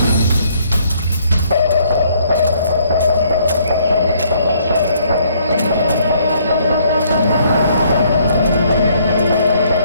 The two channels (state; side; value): inverted; both; correlation -0.66